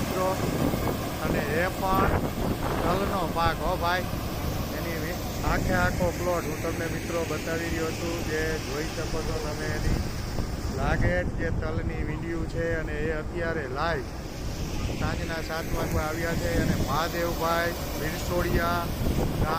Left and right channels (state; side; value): identical; both; correlation 1.00